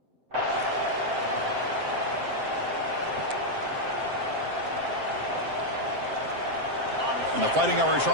And the Fighting Irish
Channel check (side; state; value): left; late; 7.7 ms